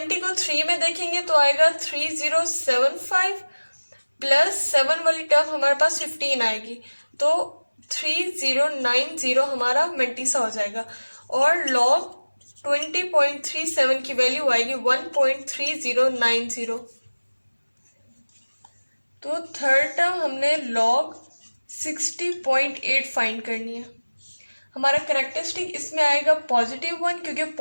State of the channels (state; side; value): inverted; both; correlation -1.00